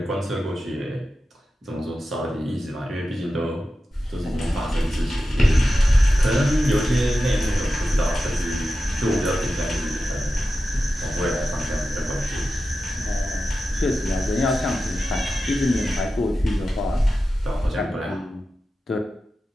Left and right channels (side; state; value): both; normal; correlation 0.92